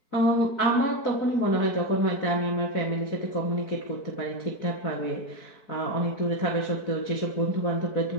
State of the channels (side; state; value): right; late; 4.6 ms